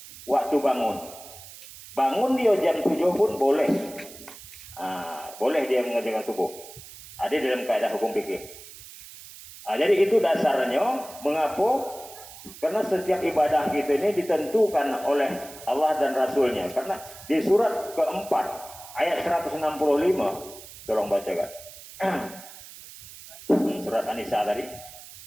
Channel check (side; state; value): right; noise; hiss, 17 dB below the sound